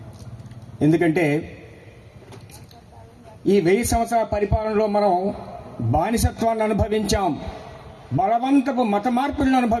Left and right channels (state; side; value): identical; both; correlation 1.00